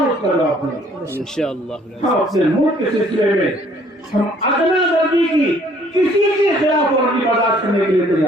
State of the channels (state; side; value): normal; both; correlation 0.60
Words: اس کا جواب دیں گے انشاءاللہ. ہم اپنے ملک کے سلسلے میں ہم ادنیٰ درجے کی کسی کے خلاف ورزی برداشت کرنے کے لیے